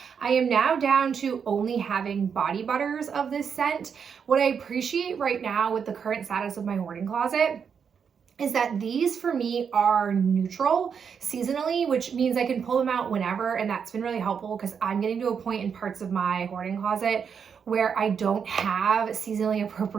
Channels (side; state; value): left; quieter; 6.8 dB